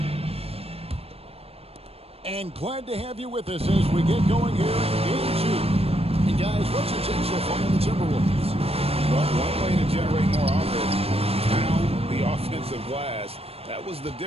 And glad to have you with us as we get going here in Game 2. And guys, what's your take so far on the Timberwolves? Well, one way to generate more offense, pound the offensive glass. That was the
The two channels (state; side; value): late; left; 0.28 ms